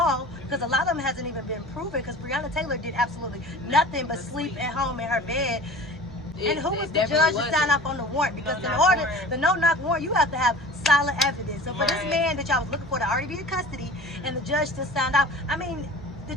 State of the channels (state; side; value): normal; both; correlation 0.40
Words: because a lot of them hasn't even been proven, because Breonna Taylor did absolutely nothing but sleep at home in her bed. And who was the judge to sign off on the warrant? Because in order, the no-knock warrant, you have to have solid evidence. So for this man that y'all was looking for to already be in custody, and the judge still signed off, I mean, the